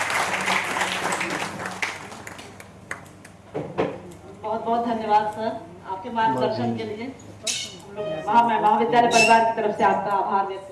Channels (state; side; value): identical; both; correlation 1.00